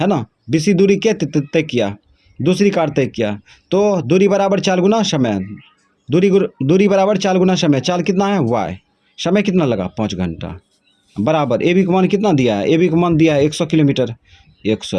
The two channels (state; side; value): identical; both; correlation 1.00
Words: ना, BC दूरी क्या तय किया, दूसरी कार तय किया। तो दूरी बराबर चाल गुना समय, दूरी बराबर चाल गुना समय। चाल कितना है y, समय कितना लगा 5 घंटा, बराबर AB का मान कितना दिया है, AB का मान दिया है 100 किलोमीटर,